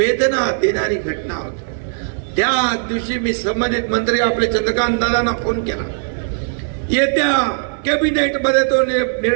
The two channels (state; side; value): silent; left; digital silence